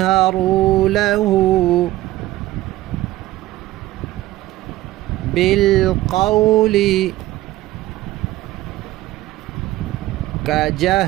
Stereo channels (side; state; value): left; quieter; 16.3 dB